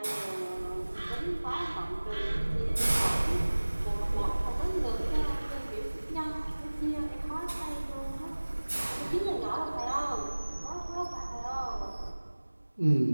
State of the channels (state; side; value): inverted; both; correlation -1.00